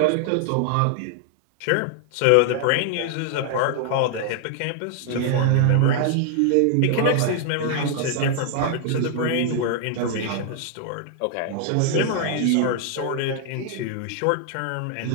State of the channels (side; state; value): both; different; correlation 0.00